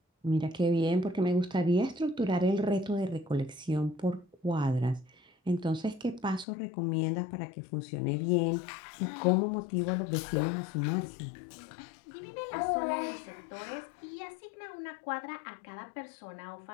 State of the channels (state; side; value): drops out; right; at 6.5 s